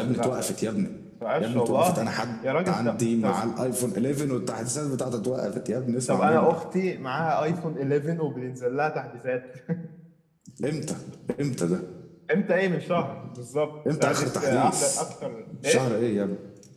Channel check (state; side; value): identical; both; correlation 1.00